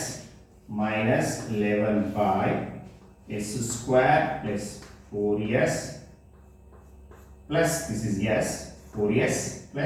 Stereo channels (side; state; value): both; identical; correlation 1.00